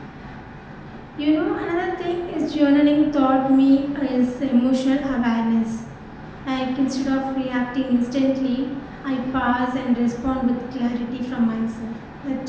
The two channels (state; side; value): identical; both; correlation 1.00